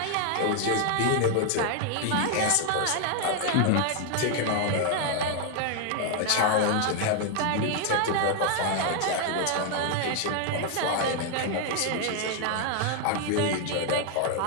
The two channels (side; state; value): both; different; correlation 0.00